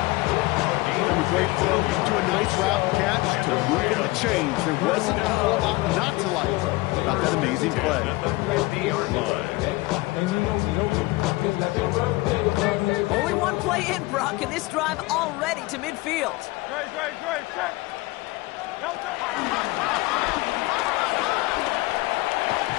From a great throw to a nice route catch to moving the chains. There wasn't a whole lot not to like about that amazing play. Only one play in, Brock, and this drive already to midfield.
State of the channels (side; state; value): right; quieter; 21.6 dB